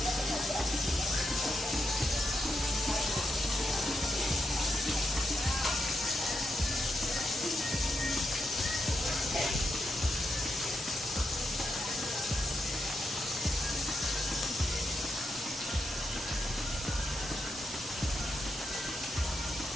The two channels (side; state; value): both; normal; correlation 0.84